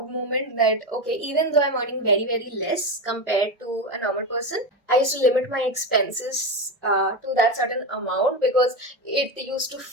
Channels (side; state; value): both; normal; correlation 0.16